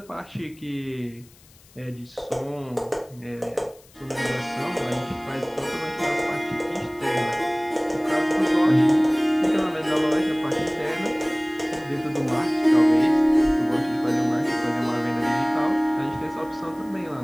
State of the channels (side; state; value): left; noise; hiss, 27 dB below the sound